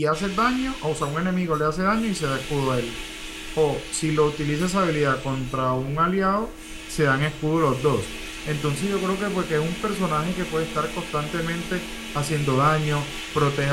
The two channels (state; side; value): identical; both; correlation 1.00